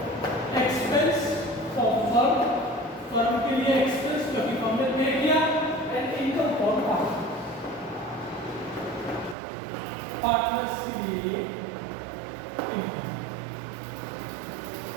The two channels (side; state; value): left; drops out; at 9.3 s